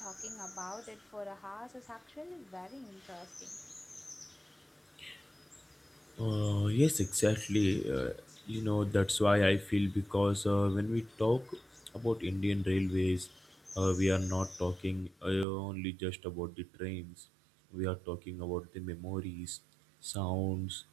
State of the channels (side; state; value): left; drops out; at 15.5 s